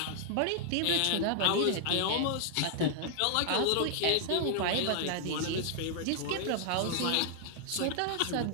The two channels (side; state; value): both; different; correlation -0.01